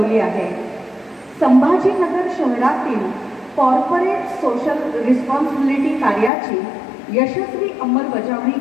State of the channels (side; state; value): right; drops out; at 6.3 s